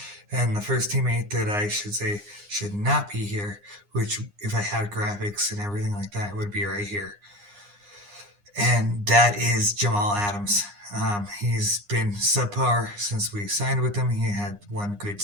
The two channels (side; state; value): left; late; 9.8 ms